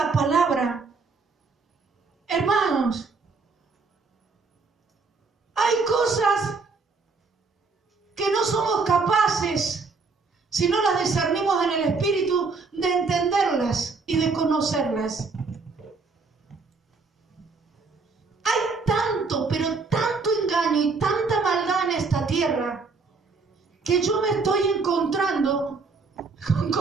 palabra, hermanos, hay cosas que no somos capaces, si no las discernimos en el Espíritu, de entenderlas y de conocerlas. Hay tanto, pero tanto engaño y tanta maldad en esta tierra, que yo me estoy encontrando con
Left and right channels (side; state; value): left; quieter; 4.4 dB